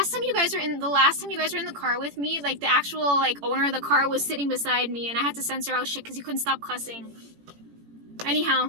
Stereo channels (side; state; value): left; late; 18 ms